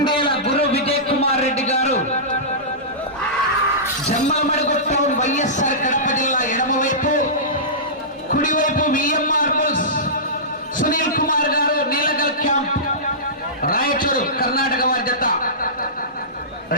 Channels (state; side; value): normal; both; correlation -0.19